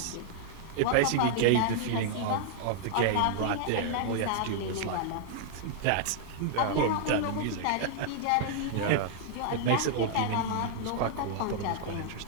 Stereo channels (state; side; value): different; both; correlation 0.00